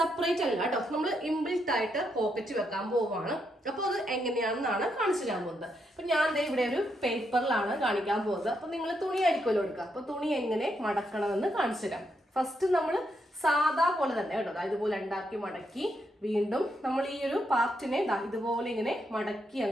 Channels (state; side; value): normal; both; correlation 0.79